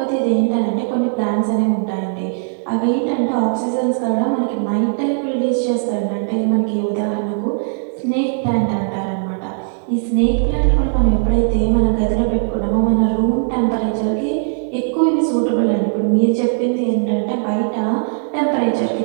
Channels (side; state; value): left; silent; 67 dB below the other